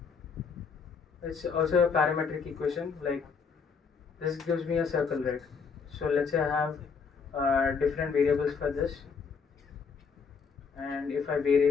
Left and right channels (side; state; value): right; quieter; 5.6 dB